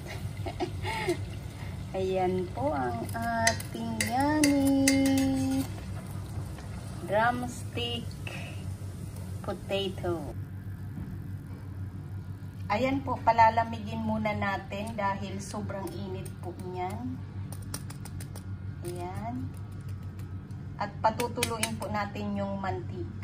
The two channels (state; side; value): identical; both; correlation 1.00